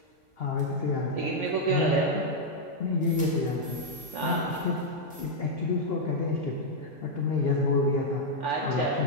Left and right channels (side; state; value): both; normal; correlation -0.03